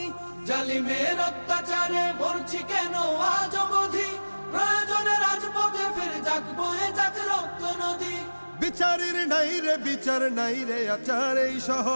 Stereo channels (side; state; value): both; inverted; correlation -1.00